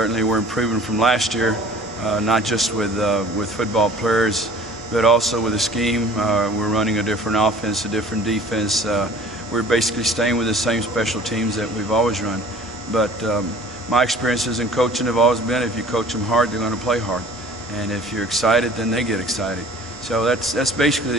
we're improving from last year, not just with football players, but also with the scheme. We're running a different offense, a different defense. We're basically staying with the same special teams that we've always run. But my experiences in coaching have always been, if you coach them hard, they're going to play hard. And if you're excited, then they get excited. So that's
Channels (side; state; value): both; normal; correlation 0.49